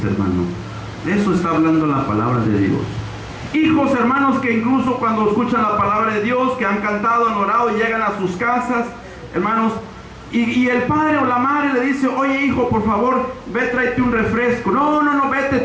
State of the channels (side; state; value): both; identical; correlation 1.00